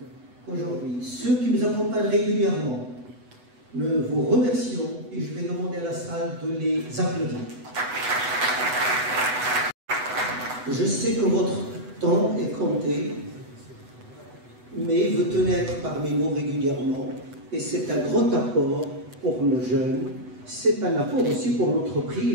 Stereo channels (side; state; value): left; late; 8.0 ms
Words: aujourd'hui, ceux qui nous accompagnent régulièrement. Nous vous remercions et je vais demander à la salle de les applaudir. Je sais que votre temps est compté, mais vous tenez à être parmi nous régulièrement et c'est un grand apport pour nos jeunes, c'est un apport aussi pour